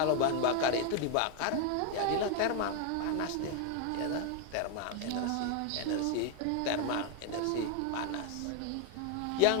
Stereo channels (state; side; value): different; both; correlation 0.01